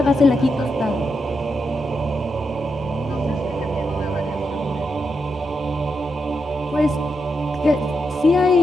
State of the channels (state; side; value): normal; both; correlation 0.84